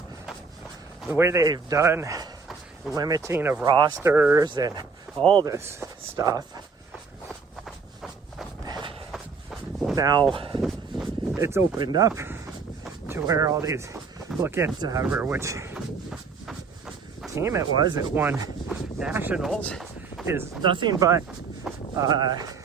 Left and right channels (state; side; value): quieter; left; 5.0 dB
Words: the way they've done limiting of rosters and all this stuff, now it's opened up to where all these, look at which team it was that won nationals, is nothing but